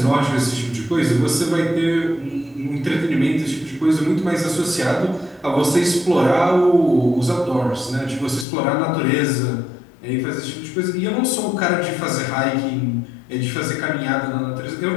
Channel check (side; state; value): right; drops out; at 8.5 s